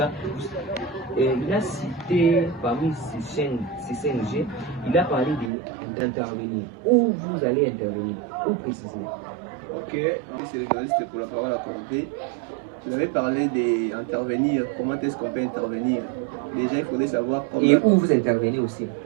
il a cité parmi ces 5 G, il a parlé d'intervenir. Où vous allez intervenir? Où précisément? Ok, c'est le journaliste pour la parole accordée. Vous avez parlé d'intervenir. Comment est-ce qu'on peut intervenir? Déjà, il faudrait savoir comment. Et où vous intervenez aussi?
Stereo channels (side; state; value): left; drops out; at 5.5 s